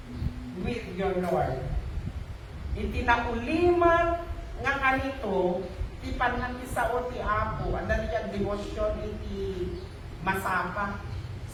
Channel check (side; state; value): both; identical; correlation 1.00